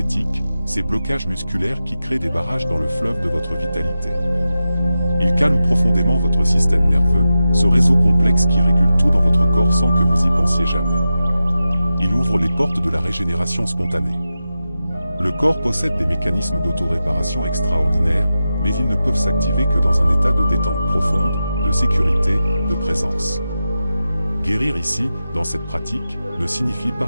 ces blocages musculaires qui créent des barrages dans le fleuve de votre vitalité. Il calme profondément votre système nerveux, ce réseau complexe qui régule tout dans votre corps sans que vous y pensiez jamais. Il ouvre les portes de la régénération spontanée. Le corps possède des mécanismes d'auto-réparation extraordinaires, mais ils ne peuvent s'activer que dans un état de détente profonde, de sécurité, de présence. Guérir ici, dans cette pratique, ne signifie pas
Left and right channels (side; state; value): both; inverted; correlation -0.92